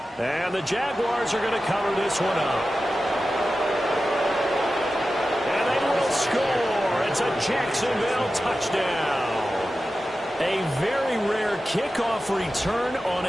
And the Jaguars are going to cover this one up. And they will score. It's a Jacksonville touchdown. A very rare kickoff return on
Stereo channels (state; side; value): normal; both; correlation 0.93